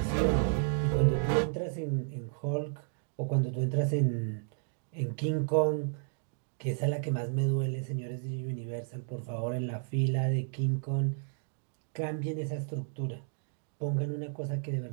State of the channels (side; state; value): left; silent; digital silence